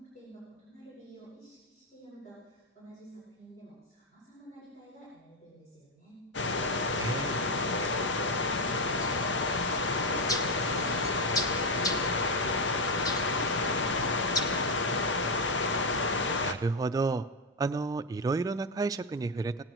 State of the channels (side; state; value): both; normal; correlation 0.07